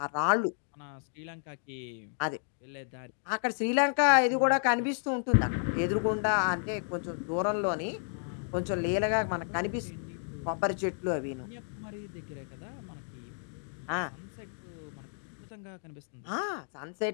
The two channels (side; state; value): right; silent; digital silence